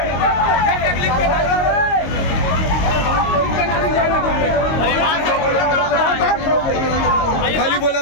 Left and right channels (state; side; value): late; right; 22 ms